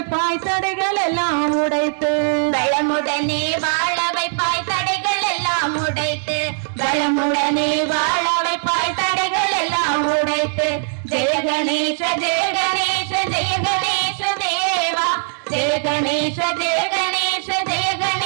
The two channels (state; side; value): silent; left; digital silence